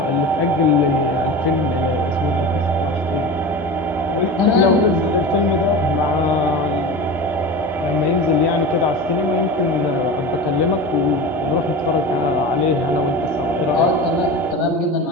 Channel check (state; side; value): normal; both; correlation 0.30